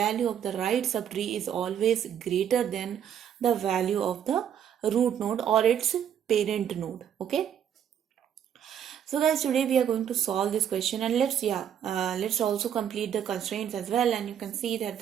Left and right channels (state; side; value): quieter; left; 9.2 dB